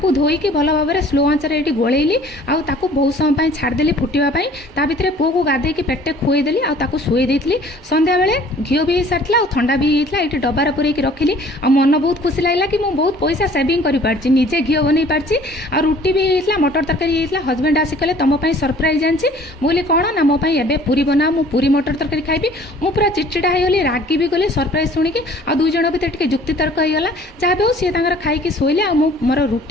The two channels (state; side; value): normal; both; correlation 0.52